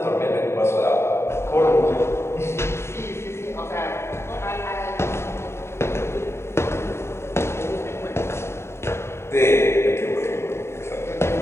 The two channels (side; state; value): right; late; 0.13 ms